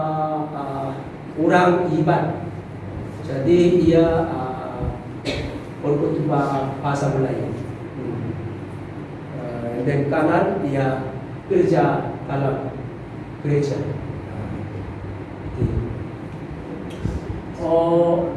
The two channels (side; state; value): both; identical; correlation 1.00